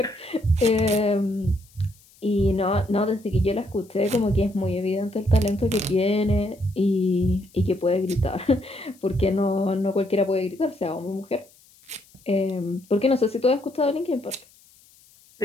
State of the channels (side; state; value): left; noise; hiss, 28 dB below the sound